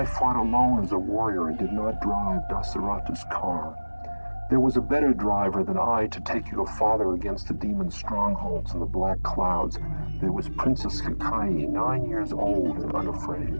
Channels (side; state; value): both; inverted; correlation -1.00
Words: fought alone as a warrior and did not drive Dasaratha's car. There was a better driver than I to take your father against the demon strongholds in the black clouds. There was Princess Kakayi, 9 years old and